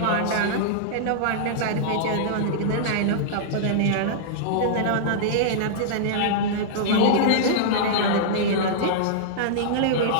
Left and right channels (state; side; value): different; both; correlation -0.02